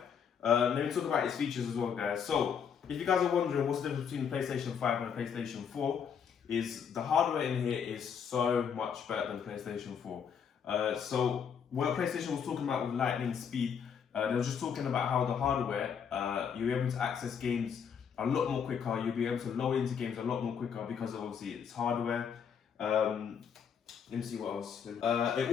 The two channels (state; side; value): quieter; right; 7.3 dB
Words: Let me talk about its features as well, guys. So if you guys are wondering what's the difference between the PlayStation 5 and the PlayStation 4, is the hardware in here is so much better than PlayStation 4. So what PlayStation was talking about with lightning speed, they were just talking about how the hardware, you're able to access games a lot more quicker. You'll be able to load into games a lot more quicker because of obviously it's hardware. Let me see what else.